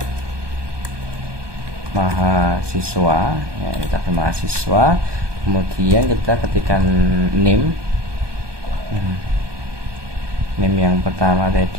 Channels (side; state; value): left; late; 1.2 ms